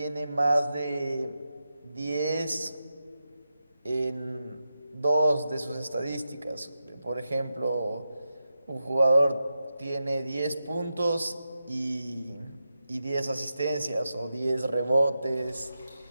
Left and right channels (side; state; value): both; inverted; correlation -0.90